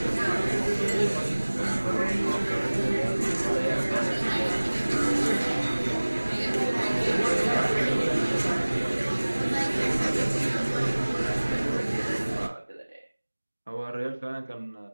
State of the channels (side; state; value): both; inverted; correlation -1.00